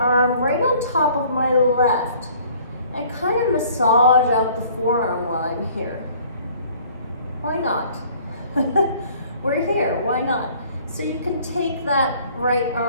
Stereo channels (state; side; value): inverted; both; correlation -0.55